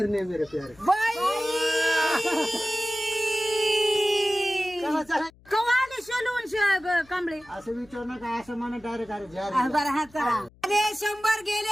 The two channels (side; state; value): left; noise; hum, 27 dB below the sound